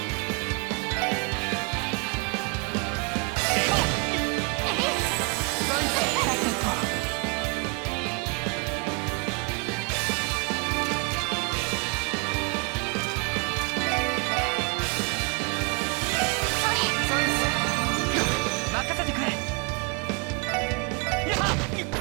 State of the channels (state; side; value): quieter; left; 32.6 dB